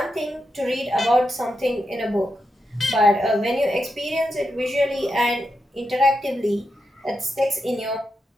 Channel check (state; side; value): normal; both; correlation 0.86